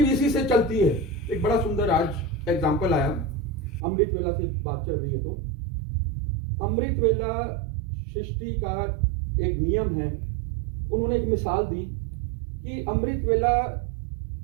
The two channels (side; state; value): left; drops out; at 3.8 s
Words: इसी से चलती है। एक बड़ा सुंदर आज एग्जाम्पल आया, अमृत वेला से बात चल रही है तो अमृत वेला सृष्टि का एक नियम है। उन्होंने एक मिसाल दी कि अमृत वेला,